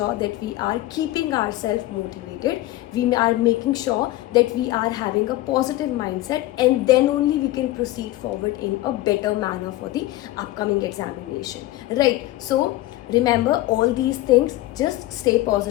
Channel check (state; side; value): quieter; right; 16.6 dB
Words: that we are keeping ourselves motivated. We are making sure that we are having a positive mindset, and then only we can proceed forward in a better manner for the upcoming examination, right? So remember all these things, just stay